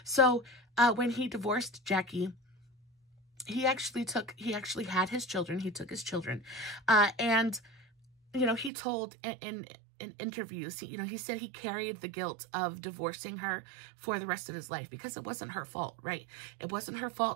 So when he divorced Jackie, he actually had his children. He took his children, and you know, he told in in interviews, you know, he said he carried the guilt of divorcing her for the rest of his life because it wasn't her fault, right? It wasn't her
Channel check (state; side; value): drops out; left; at 8.7 s